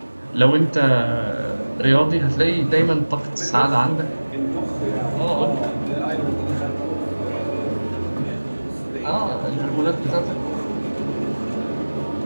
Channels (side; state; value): both; inverted; correlation -1.00